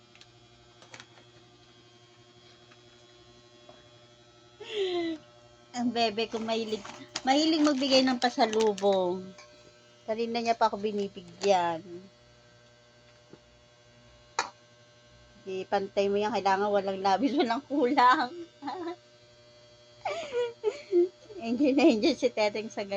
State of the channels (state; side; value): identical; both; correlation 1.00